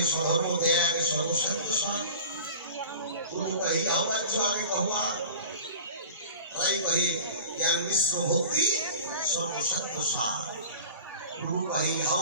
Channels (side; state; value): both; inverted; correlation -0.39